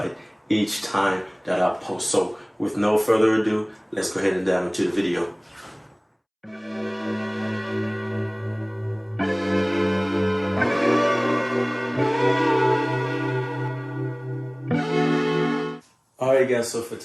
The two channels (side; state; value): both; identical; correlation 1.00